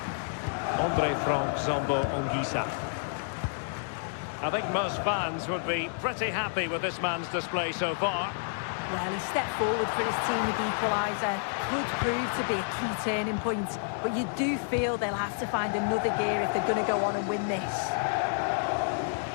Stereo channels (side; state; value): right; silent; digital silence